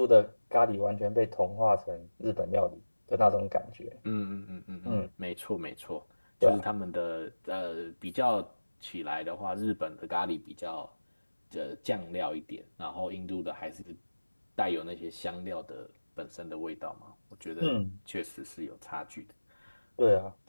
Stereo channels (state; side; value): inverted; both; correlation -1.00